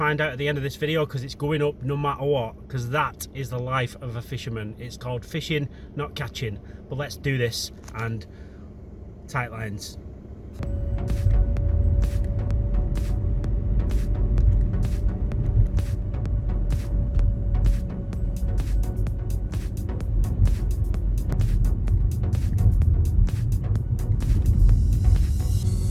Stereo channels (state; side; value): identical; both; correlation 1.00